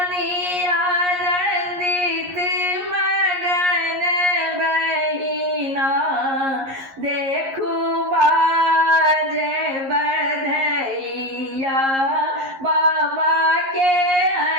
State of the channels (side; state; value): left; late; 11 ms